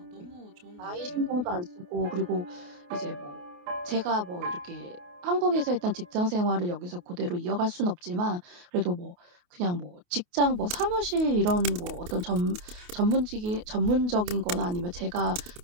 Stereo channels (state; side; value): late; left; 28 ms